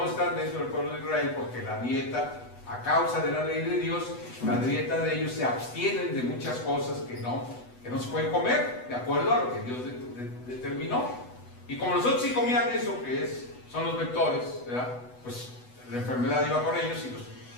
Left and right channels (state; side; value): late; right; 8.1 ms